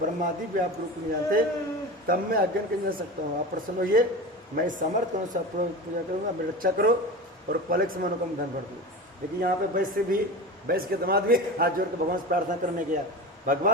भी आप रूप नहीं जानते, तब मैं अज्ञान कर सकता हूँ। आप प्रसन्न होइए, मैं समर्थ करूँ, सब पूजा करूँगा, मेरी रक्षा करो और पलक से मनोकाम धन भर दूँ। लेकिन यहाँ पे वैश्य के दामाद भी हाथ जोड़ के भगवान से प्रार्थना करने गया,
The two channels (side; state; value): both; normal; correlation 0.29